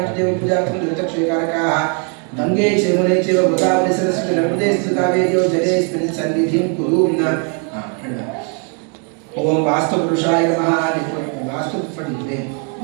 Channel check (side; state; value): left; quieter; 39.1 dB